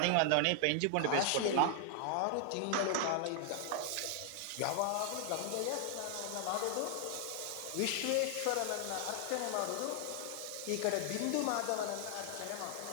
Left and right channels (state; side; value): different; both; correlation 0.00